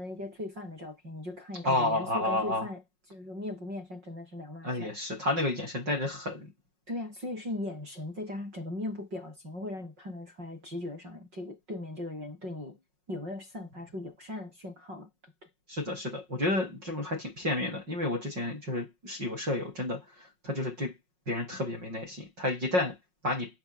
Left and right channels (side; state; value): left; late; 5.5 ms